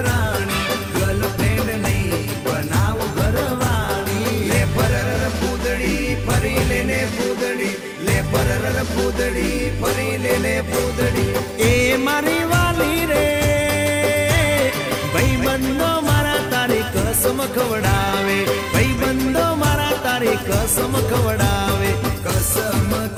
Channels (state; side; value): identical; both; correlation 1.00